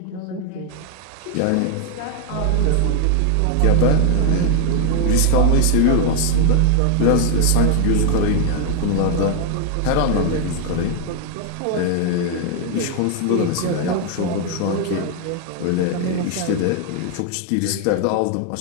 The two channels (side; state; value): both; different; correlation 0.01